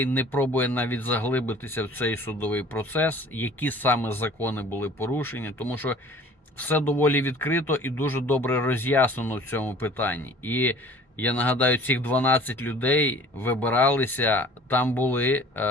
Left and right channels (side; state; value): both; normal; correlation 0.47